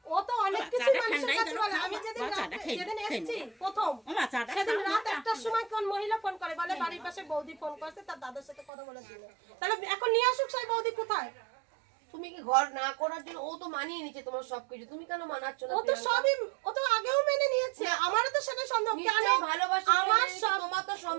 ও তো অনেক কিছু মানুষের কাছে বলে। আমি যেদিন এসেছি প্রথম সেদিন রাত 1টার সময় কোন মহিলা ফোন করে, বলে বাড়ির পাশে বৌদি ফোন করেছে, তার দাদার সাথে কথা বলেছিল। তাহলে এখন নিয়ে আসুক সেই বৌদি কোথায়? তুমি কি ঘর না করার জন্য? ও তো মানিয়ে নিচ্ছে তোমার সবকিছু, তুমি কেন মানাচ্ছ না? ও তো সবই, ও তো আগেও মেনে নিয়েছে। আমারও তো সেটা সন্দেহ। কেন ভালোবাসা? আমার তোমার তো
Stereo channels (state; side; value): drops out; left; at 8.7 s